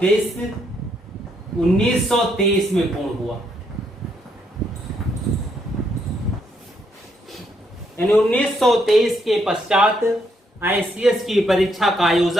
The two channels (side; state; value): both; normal; correlation 0.74